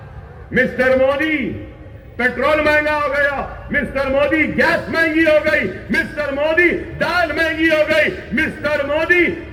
मिस्टर मोदी, पेट्रोल महंगा हो गया। मिस्टर मोदी, गैस महंगी हो गई। मिस्टर मोदी, दाल महंगी हो गई। मिस्टर मोदी,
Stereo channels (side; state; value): both; identical; correlation 1.00